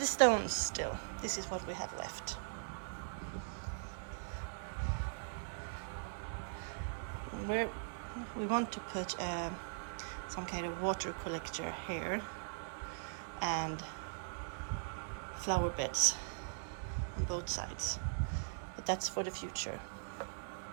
stones still. This is what we have left. We want to put some kind of water collector here and flower beds on both sides, but that's for the future.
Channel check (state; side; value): silent; left; digital silence